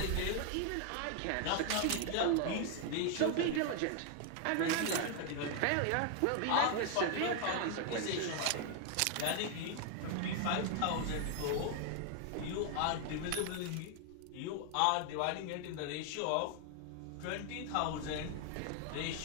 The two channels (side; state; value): both; different; correlation 0.00